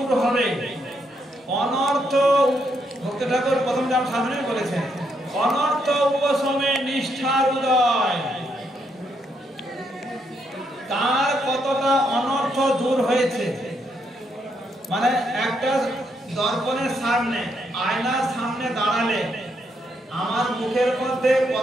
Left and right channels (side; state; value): both; normal; correlation 0.77